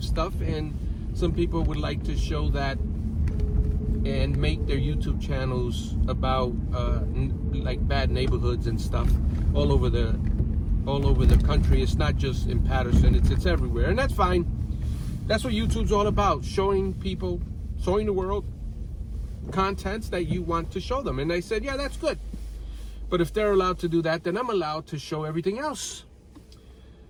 stuff, and some people would like to show that and make their YouTube channels about like bad neighborhoods and stuff all over the country. It's not just in Patterson, it's everywhere, and that's fine. That's what YouTube's all about, showing people, showing the world contents that you want to show them. And I said, yeah, that's good. But if they're allowed to do that, then I'm allowed to show everything else.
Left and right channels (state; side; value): identical; both; correlation 1.00